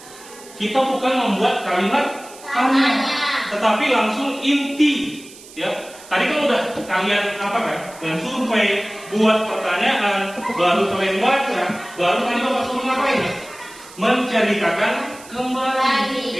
kita bukan membuat kalimat tanya, tetapi langsung inti. Ya, tadi kan udah kalian apa kan? Dan survei, buat pertanyaan, baru kalian baca, baru kalian Bapak suruh ngapain? Ya? Menceritakan kembali.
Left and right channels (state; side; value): noise; right; hiss, 19 dB below the sound